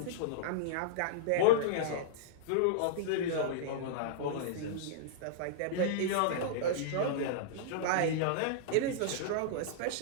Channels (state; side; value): different; both; correlation -0.03